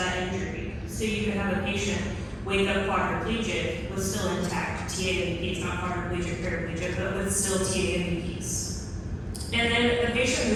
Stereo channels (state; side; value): identical; both; correlation 1.00